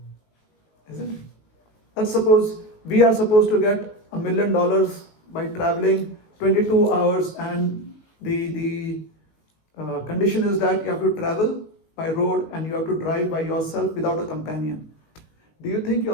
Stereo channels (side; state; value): right; late; 19 ms